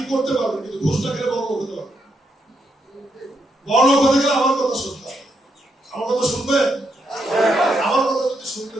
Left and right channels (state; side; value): normal; both; correlation 0.79